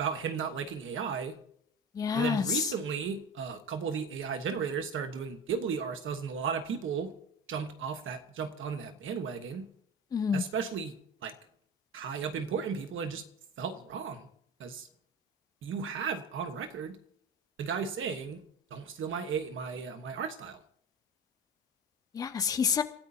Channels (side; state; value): both; normal; correlation 0.29